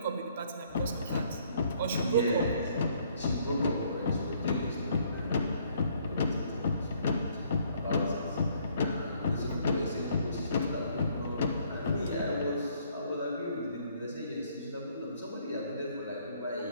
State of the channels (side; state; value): both; inverted; correlation -0.65